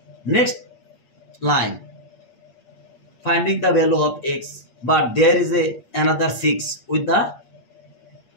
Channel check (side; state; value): right; late; 8.6 ms